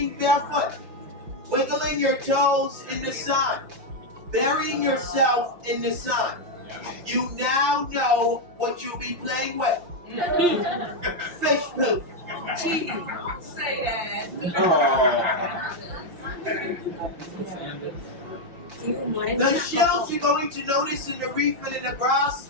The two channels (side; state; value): left; late; 5.7 ms